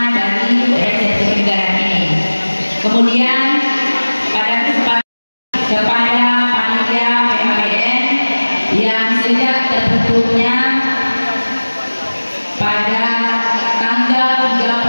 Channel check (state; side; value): inverted; both; correlation -1.00